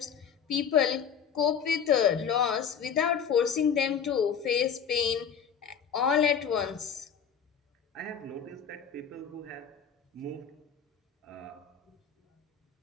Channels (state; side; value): quieter; right; 7.4 dB